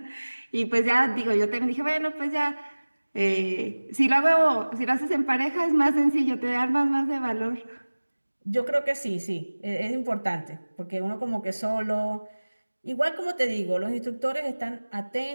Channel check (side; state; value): both; inverted; correlation -1.00